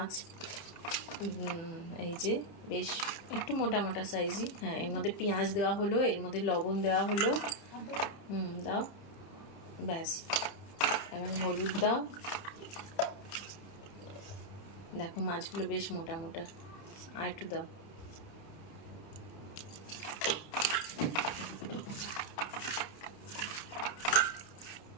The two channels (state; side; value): late; right; 30 ms